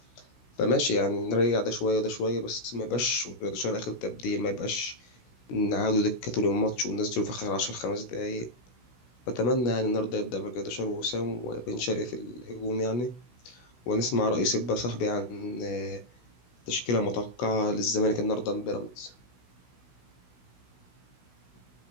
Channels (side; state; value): right; late; 16 ms